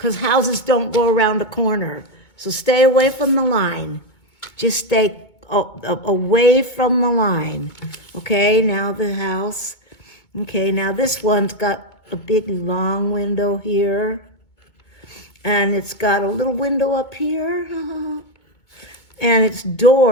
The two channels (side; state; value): right; late; 2.2 ms